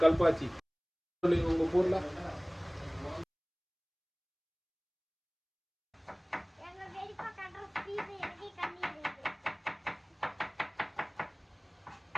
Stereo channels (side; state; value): both; identical; correlation 1.00